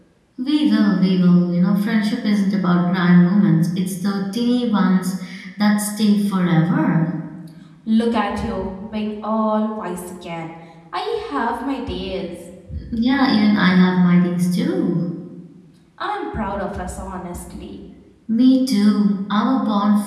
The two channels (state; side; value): identical; both; correlation 1.00